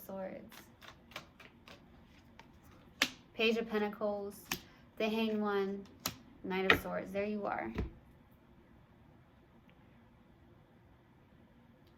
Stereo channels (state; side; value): identical; both; correlation 1.00